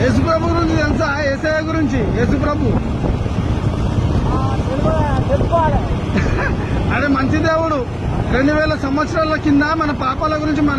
యేసుప్రభు గురించి తెలుసా? యేసయ్య గురించి యేసుప్రభు అదే మంచి దేవుడు. 2000 సంవత్సరాల కింద మన పాపాల గురించి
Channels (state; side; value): identical; both; correlation 1.00